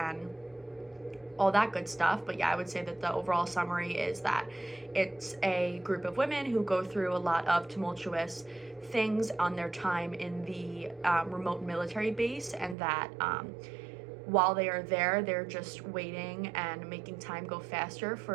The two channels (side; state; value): left; drops out; at 12.8 s